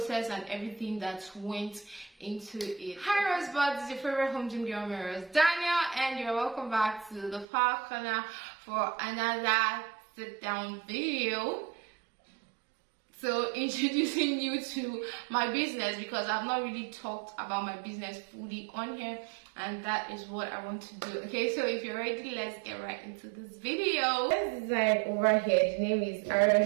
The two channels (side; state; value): left; drops out; at 7.5 s